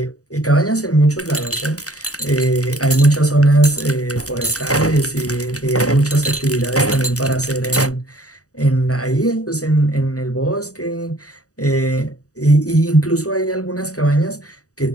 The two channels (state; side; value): late; right; 0.66 ms